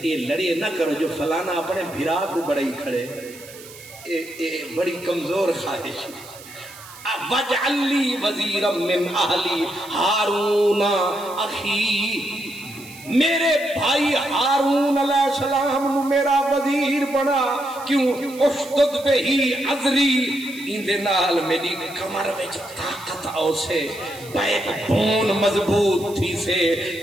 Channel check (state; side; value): noise; right; hiss, 18 dB below the sound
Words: یہ لڑیے نہ کرو جو فلانا اپنے بھیرا کو بڑی کھڑے بڑی کمزور خواہش وَجْعَلْ لِي وَزِيرًا مِّنْ أَهْلِي هَارُونَ أَخِي میرے بھائی ہارون علیہ السلام نو میرا وزیر بنا کیوں اشدد بہی عذری اندے نال میری کمر وچ طاقت آؤ سے بیک بون مضبوط تھی سے